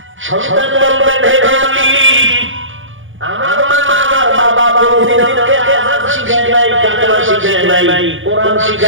সন্তান বলবেন, হে মালিক, আমার মা আমার বাবা কোনদিনকে আযাব শিখায় নাই, কালেমা শিখায় নাই, কোরআন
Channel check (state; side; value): late; left; 0.57 ms